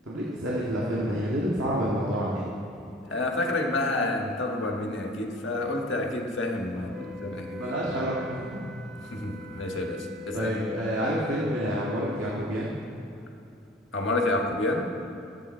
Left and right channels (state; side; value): normal; both; correlation 0.45